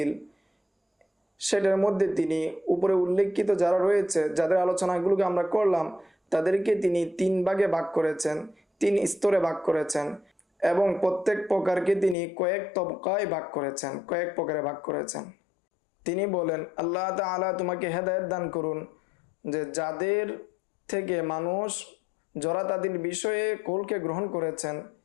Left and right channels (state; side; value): drops out; right; at 12.2 s